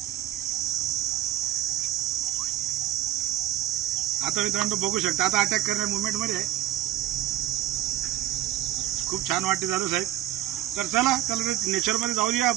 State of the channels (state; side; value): quieter; left; 13.4 dB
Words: आता मित्रांनो बघू शकता, आता अटॅक करण्या मुवमेंटमध्ये आहे. खूप छान वाटते जाधव साहेब. तर चला त्याला नेचरमध्ये जाऊ द्या